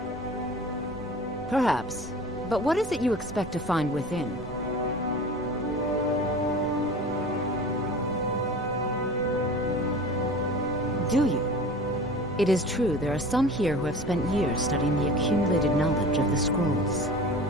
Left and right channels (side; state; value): both; normal; correlation 0.39